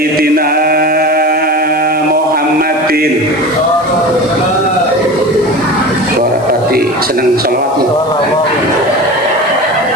Muhammadin warahmati seneng sholawatmu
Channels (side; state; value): left; noise; hiss, 23 dB below the sound